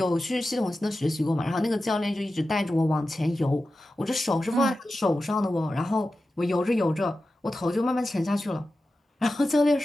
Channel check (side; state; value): both; normal; correlation 0.93